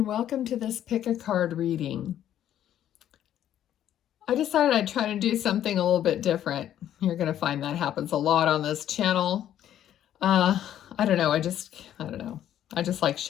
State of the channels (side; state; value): right; quieter; 11.1 dB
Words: welcome to this pick a card reading. I decided I'd try to do something a little bit different. You're going to find that happens a lot on this channel. I don't know. I don't know. I just like